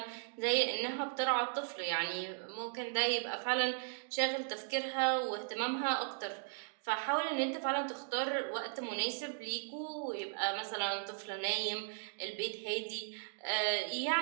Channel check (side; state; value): left; silent; digital silence